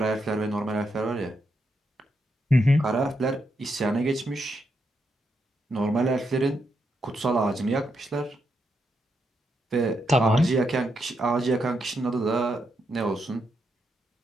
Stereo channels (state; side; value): normal; both; correlation 0.81